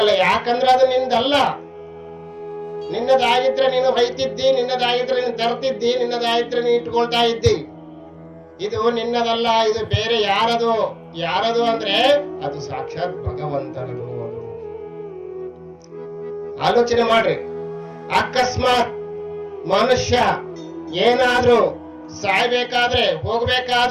ಯಾಕಂದ್ರೆ ಅದು ನಿಂದಲ್ಲ. ನಿನ್ನದಾಗಿದ್ರೆ ನೀನು ಹೊಯ್ತಿದ್ದಿ, ನಿನ್ನದಾಗಿದ್ರೆ ನೀನು ತರ್ತಿದ್ದಿ, ನಿನ್ನದಾಗಿದ್ರೆ ನೀನು ಇಟ್ಕೊಳ್ತಾ ಇದ್ದಿ. ಇದು ನಿನ್ನದಲ್ಲ. ಇದು ಬೇರೆ ಯಾರದು? ಯಾರದು ಅಂದ್ರೆ ಅದು ಸಾಕ್ಷಾತ್ ಭಗವಂತನದು. ಅದು ಆಲೋಚನೆ ಮಾಡ್ರಿ. ಅಕಸ್ಮಾತ್ ಮನುಷ್ಯ ಏನಾದ್ರೂ ಸಾಯ್ಬೇಕಾದ್ರೆ,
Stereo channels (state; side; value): identical; both; correlation 1.00